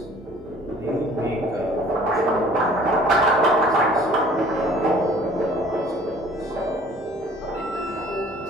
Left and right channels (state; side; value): normal; both; correlation 0.52